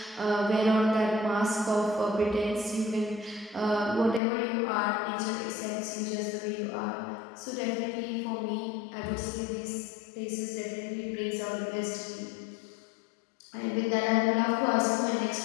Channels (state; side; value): drops out; right; at 4.2 s